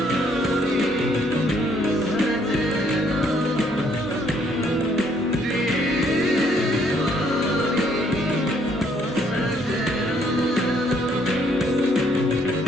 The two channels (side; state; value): both; normal; correlation 0.67